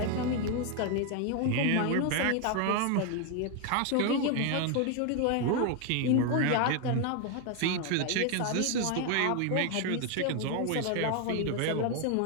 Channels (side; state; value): both; different; correlation 0.01